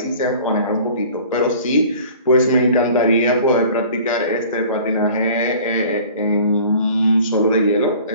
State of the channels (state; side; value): inverted; both; correlation -0.47